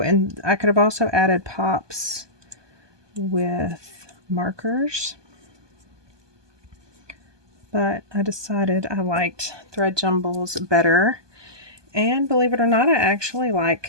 I could have also added pops with markers. But I decided I liked thread jumbles better. And believe it or not, I actually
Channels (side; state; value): left; late; 1.2 ms